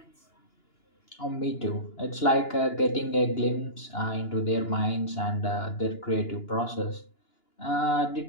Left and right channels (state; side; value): late; right; 2.9 ms